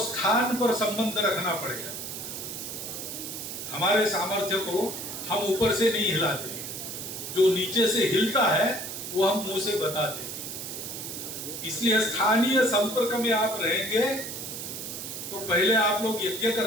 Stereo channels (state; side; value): noise; right; hiss, 7 dB below the sound